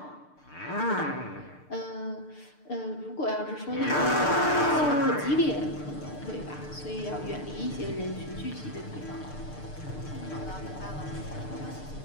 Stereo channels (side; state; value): right; late; 6.7 ms